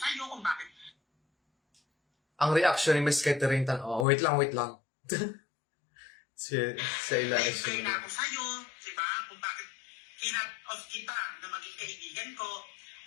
kung bakit ang reaction ni Miss Catering wait lang. si Ila is implay na ako sa'yo, diba? Kung bakit kinat-off kita na maging kaibigan ko,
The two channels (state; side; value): drops out; right; at 4.0 s